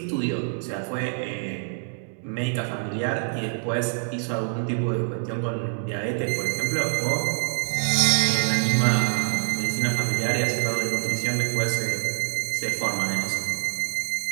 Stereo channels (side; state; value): left; silent; digital silence